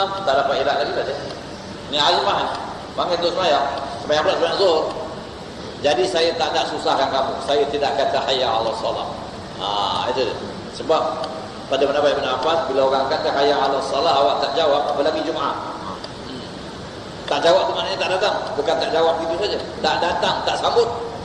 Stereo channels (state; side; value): identical; both; correlation 1.00